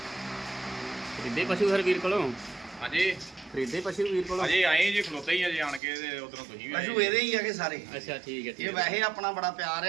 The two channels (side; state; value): left; drops out; at 5.8 s